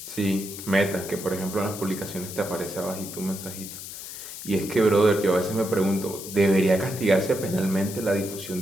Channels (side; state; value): left; noise; hiss, 10 dB below the sound